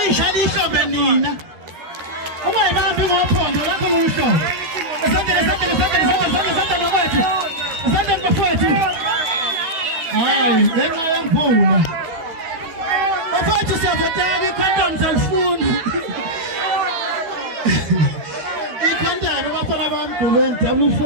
ihlombe nina ungayibambi ngophondo lakho loluhlobo. Asante ngabafowethu. Asante ngabafowethu. Hayi, ngenxa yemvula. Bafowethu siyavotela i-condoms alifuni. I-condom abafana bami Gqubeni W4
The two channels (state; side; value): late; left; 12 ms